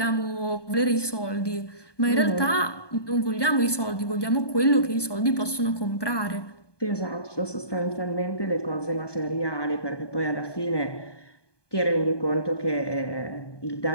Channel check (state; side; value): late; right; 1.2 ms